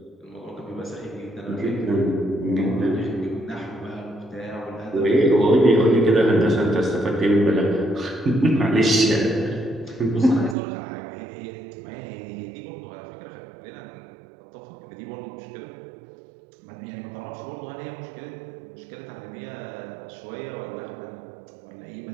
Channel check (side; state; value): left; drops out; at 10.6 s